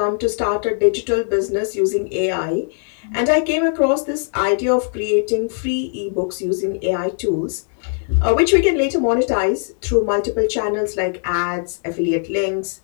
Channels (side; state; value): right; silent; 60 dB below the other